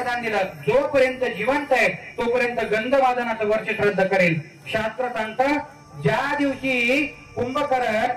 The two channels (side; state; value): both; identical; correlation 1.00